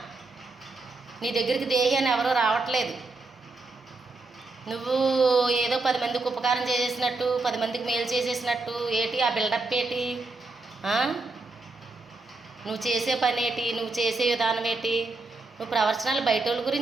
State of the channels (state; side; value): quieter; left; 3.4 dB